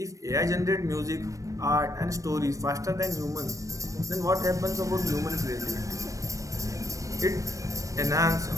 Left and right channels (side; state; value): left; late; 0.16 ms